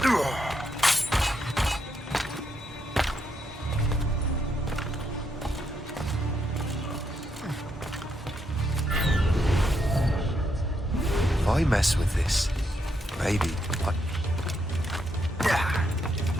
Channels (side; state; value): both; normal; correlation 0.79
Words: If I mess with this, maybe I...